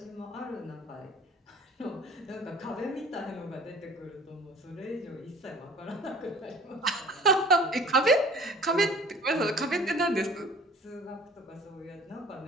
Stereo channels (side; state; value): both; normal; correlation 0.48